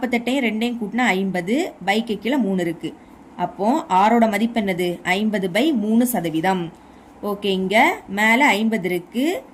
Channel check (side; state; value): both; identical; correlation 1.00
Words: 2ஐயும் கூட்டினா 50. பைக்கு கீழே 3 இருக்கு. அப்போ ஆரோட மதிப்பு என்னது? 50/3%. ஓகே. இங்க மேல 50 இருக்கு.